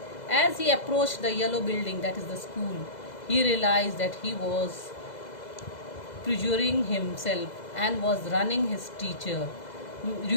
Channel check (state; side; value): late; right; 2.0 ms